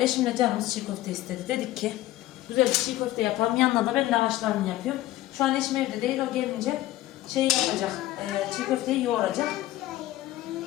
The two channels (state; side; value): quieter; right; 15.6 dB